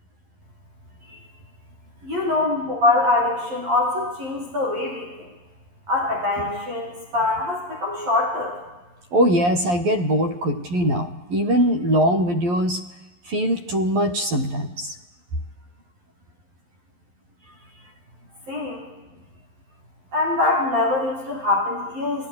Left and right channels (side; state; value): left; late; 11 ms